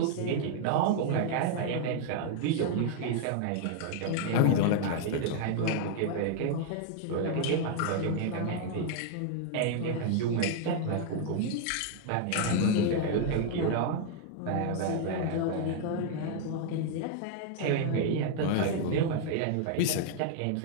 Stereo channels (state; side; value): different; both; correlation 0.00